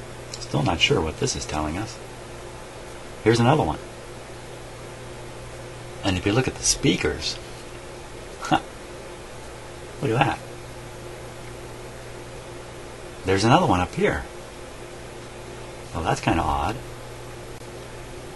Still not sure what this is telling us. Here's another one. And if you look at the speakers, look at that. There's another one up here. Well, that's kind of odd.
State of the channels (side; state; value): both; identical; correlation 1.00